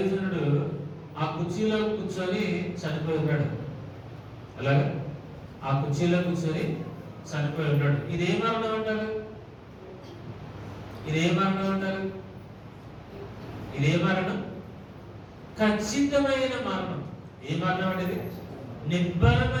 ఆ కుర్చీలో కూర్చొని చనిపోయి ఉన్నాడు. అలాగా ఆ కుర్చీలో కూర్చొని చనిపోయి ఉన్నాడు. ఇదే మరణం అంటారు? ఇదే మరణం అంటారు? ఇదే మరణం, ఖచ్చితమైన మరణం. ఏ మరణం అనేది?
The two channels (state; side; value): identical; both; correlation 1.00